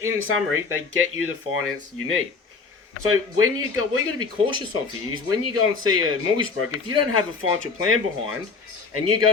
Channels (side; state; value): right; quieter; 4.7 dB